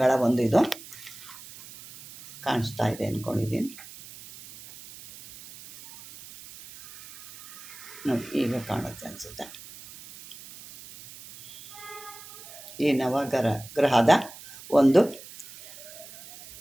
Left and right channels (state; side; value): noise; right; hiss, 17 dB below the sound